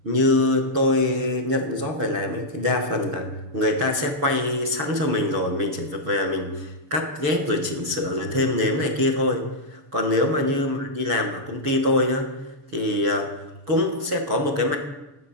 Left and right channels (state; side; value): late; left; 7.0 ms